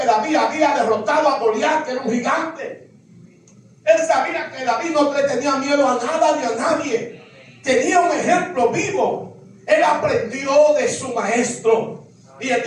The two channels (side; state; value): both; identical; correlation 1.00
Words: David había derrotado a Goliat, que era un gigante. Él sabía que David no le tenía miedo a nada ni a nadie. Tenía un ejemplo vivo. Él aprendió de su maestro. Y él